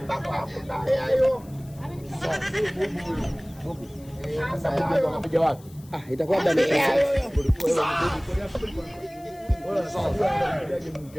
Hayo. Mungu. Sasa ndio unapiga wapi? Itakuwa bado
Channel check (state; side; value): noise; left; hiss, 25 dB below the sound